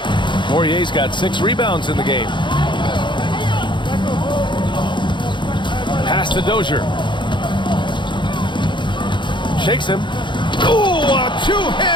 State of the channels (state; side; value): late; right; 0.23 ms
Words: Poirier's got 6 rebounds in the game. Pass to Dozier. Shakes him. Ooh, a